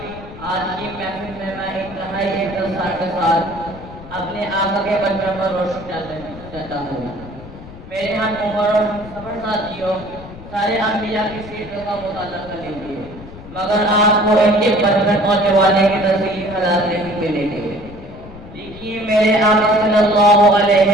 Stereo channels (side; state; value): left; noise; rumble, 16 dB below the sound